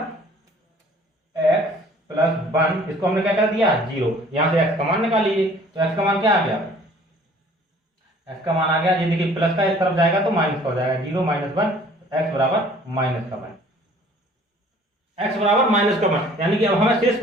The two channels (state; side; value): normal; both; correlation 0.53